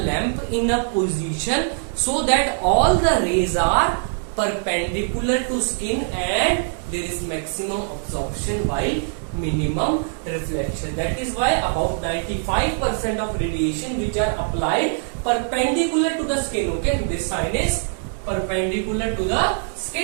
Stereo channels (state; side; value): silent; left; 64 dB below the other